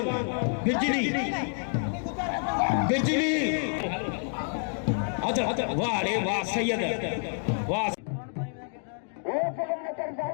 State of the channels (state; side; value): silent; right; 56 dB below the other